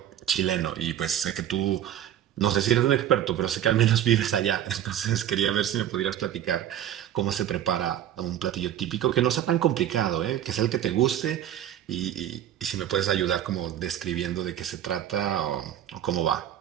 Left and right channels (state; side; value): quieter; left; 10.9 dB